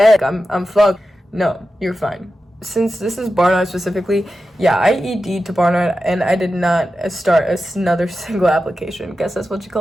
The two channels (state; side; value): normal; both; correlation 0.92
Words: I'm fucked. No, you're fine. Since this is Barnard specifically, yeah, I ED'd to Barnard and I did not start another single application. Guess that's what you